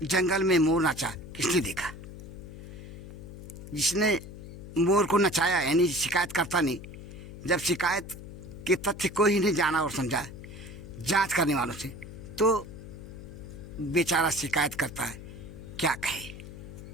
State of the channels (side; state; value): left; noise; hum, 13 dB below the sound